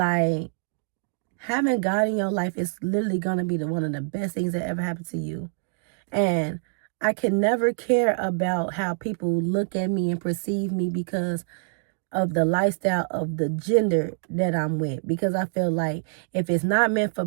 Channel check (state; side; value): silent; left; digital silence